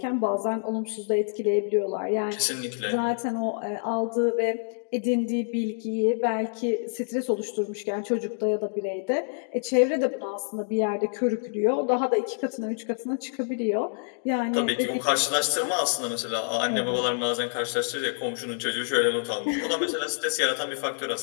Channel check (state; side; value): silent; right; digital silence